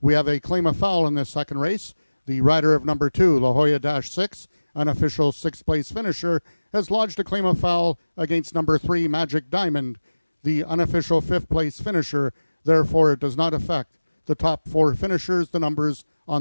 We have a claim of foul in this second race. The rider of number 2, La Jolla-6, unofficial 6th place finisher, has lodged a claim of foul against number 3, Magic Diamond, the unofficial 5th place finisher. Therefore, it does not affect the top 4 finishers, the numbers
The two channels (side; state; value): both; inverted; correlation -1.00